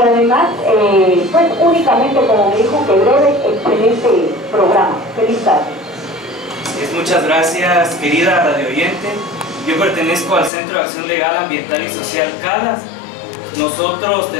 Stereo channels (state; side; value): drops out; right; at 10.5 s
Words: además, pues únicamente, como me dijo, que breve, excelente programa. Feliz tarde. Muchas gracias, querida radio oyente. Yo pertenezco al Centro de Acción Legal, Ambiental y Social CALAS. Nosotros